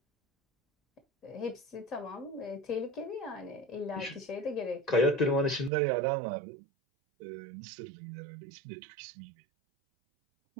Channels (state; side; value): drops out; left; at 5.7 s